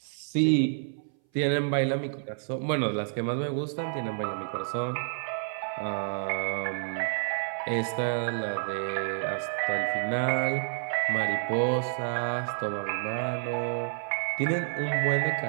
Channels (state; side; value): silent; left; 58 dB below the other